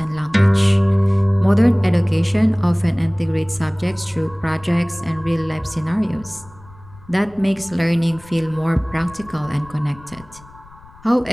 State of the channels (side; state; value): left; noise; rumble, 23 dB below the sound